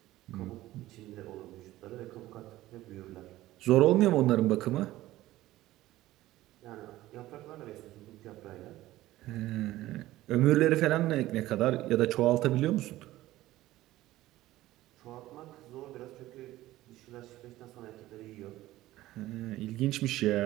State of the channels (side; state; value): left; quieter; 16.0 dB